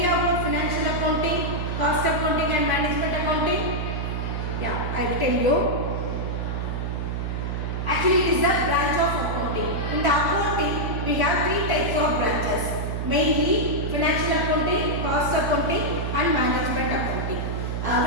about financial accounting, cost accounting and management accounting? Yeah, I will tell you. Actually, it is a branch of accounting. In the accounting, we have three types of branches. Mainly, financial accounting, cost accounting and management accounting.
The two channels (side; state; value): right; noise; hum, 2 dB below the sound